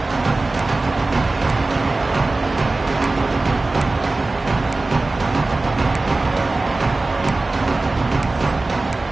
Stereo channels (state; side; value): quieter; left; 3.2 dB